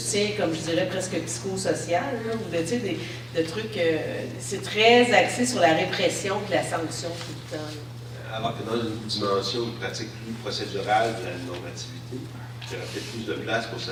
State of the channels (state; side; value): identical; both; correlation 1.00